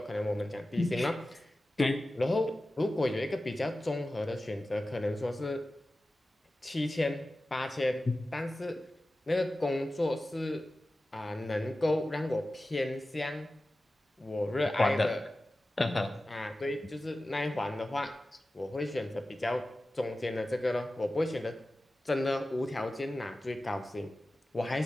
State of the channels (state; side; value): normal; both; correlation 0.95